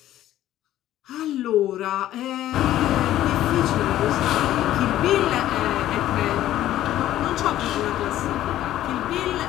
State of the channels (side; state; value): right; quieter; 13.3 dB